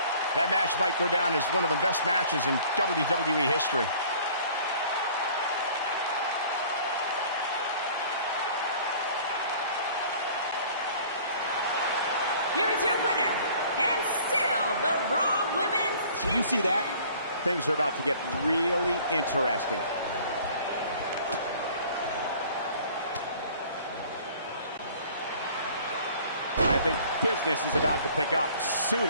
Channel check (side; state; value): both; inverted; correlation -0.51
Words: That match might go down as one of the best matches in WWE history. Here is your winner, and still the Raw Women's Champion. You see that? Things are about to get really interesting. I think business is about to pick up